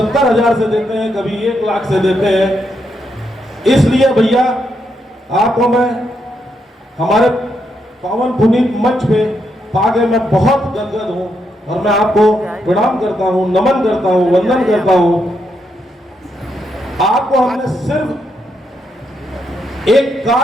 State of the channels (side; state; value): both; normal; correlation 0.80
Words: से देते हैं, कभी 1 लाख से देते हैं। इसलिए भैया आपको मैं हमारे पावन पुनीत मंच पे पाके मैं बहुत गदगद हूं और मैं आपको प्रणाम करता हूं, नमन करता हूं, वंदन करता हूं। आपको हमने सिर्फ एक